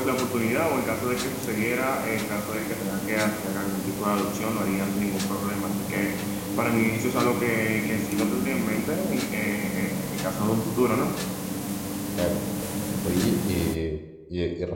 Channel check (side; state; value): both; identical; correlation 1.00